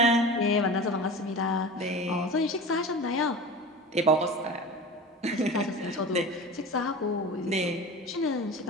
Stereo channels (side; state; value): both; normal; correlation 0.33